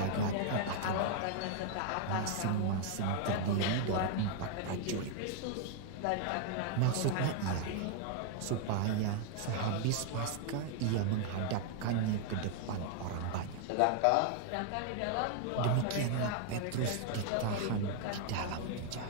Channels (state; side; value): different; both; correlation 0.00